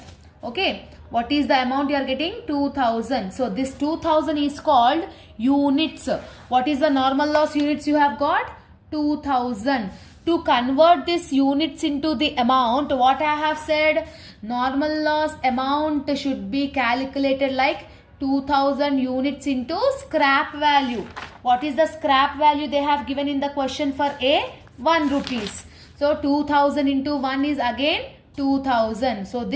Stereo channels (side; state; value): both; identical; correlation 1.00